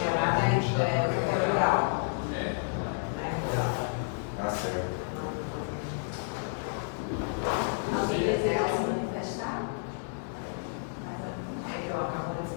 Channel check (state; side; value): silent; right; digital silence